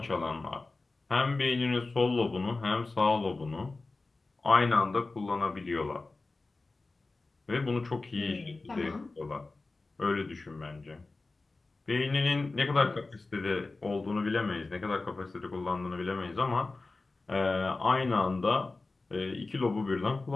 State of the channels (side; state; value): right; quieter; 3.5 dB